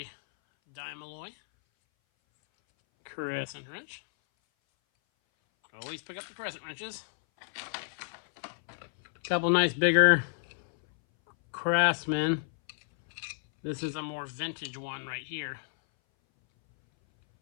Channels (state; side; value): silent; right; 57 dB below the other